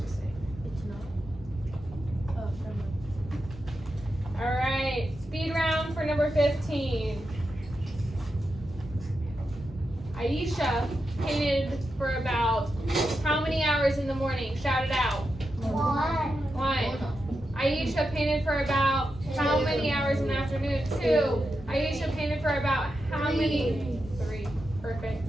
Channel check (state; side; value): normal; both; correlation 0.88